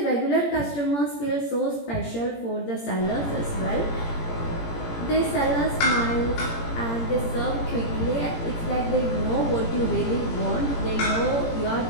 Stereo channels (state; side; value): late; right; 17 ms